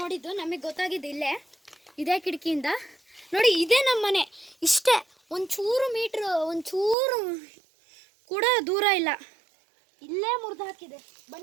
ನಮಗೆ ಗೊತ್ತಾಗಿದ್ದು ಇಲ್ಲೇ, ಇದೇ ಕಿಟಕಿಯಿಂದ ನೋಡಿ. ಇದೇ ನಮ್ಮ ಮನೆ, ಇಷ್ಟೇ, ಒಂಚೂರು ಕೂಡ ದೂರ ಇಲ್ಲ, ಇಲ್ಲೇ ಮುರಿದಾಕಿದೆ.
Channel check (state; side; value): drops out; left; at 7.0 s